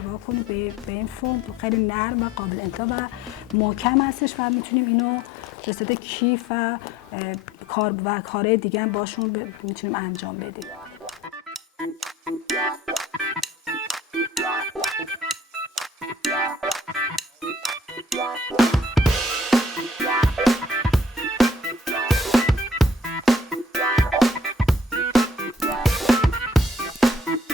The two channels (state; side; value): normal; both; correlation 0.55